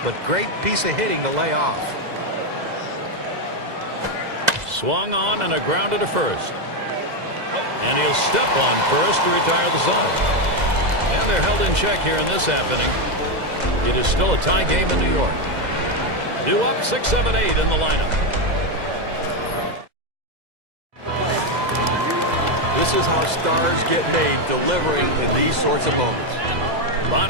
but great piece of hitting to lay off. Swung on and a grounder to first. And he'll step on first to retire the side. And they're held in check here in this half inning. It is still a tie game in New York. Due up 6-7-8 in the lineup. This is how stars get made, delivering in these sorts of moments.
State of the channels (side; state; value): left; late; 2.0 ms